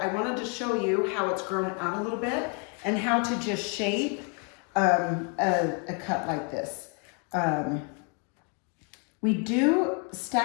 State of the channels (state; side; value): quieter; right; 35.6 dB